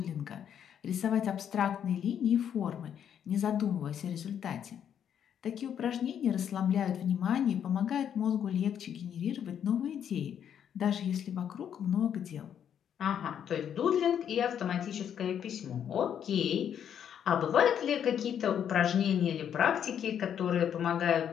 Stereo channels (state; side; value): quieter; right; 8.9 dB